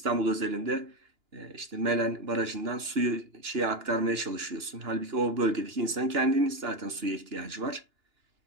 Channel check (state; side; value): late; left; 2.9 ms